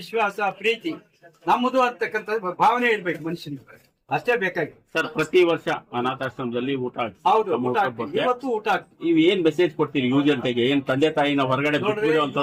ಪ್ರೀತಿ ನಮ್ಮದು ಅಂತಕ್ಕಂಥ ಭಾವನೆ ಇರ್ಬೇಕು ಮನುಷ್ಯನಿಗೆ. ಅಷ್ಟೇ ಬೇಕಾಗಿ. ಸರ್, ಪ್ರತಿ ವರ್ಷ ಅನಾಥಾಶ್ರಮದಲ್ಲಿ ಊಟ ಹೌದು, ಊಟ ಆಗ್ತದೆ. ಇವತ್ತು ಊಟ ಆಗ್ತದೆ. ನೀವು ಏನ್ ಮೆಸೇಜ್ ಕೊಡ್ತೀರಿ ಯುವ ಜನತೆಗೆ? ಏನ್ ತಂದೆ ತಾಯಿನ ಹೊರಗಡೆ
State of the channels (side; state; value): both; identical; correlation 1.00